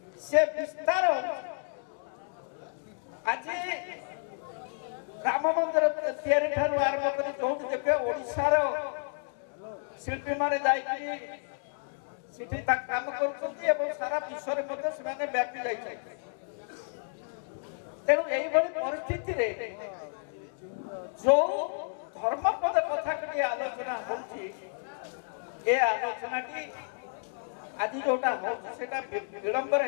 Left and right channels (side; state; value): right; silent; digital silence